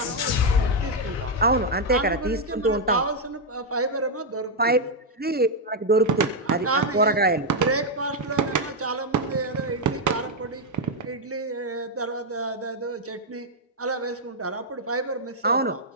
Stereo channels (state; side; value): normal; both; correlation 0.00